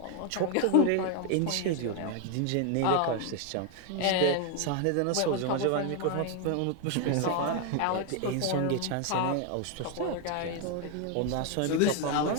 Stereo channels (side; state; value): both; different; correlation 0.01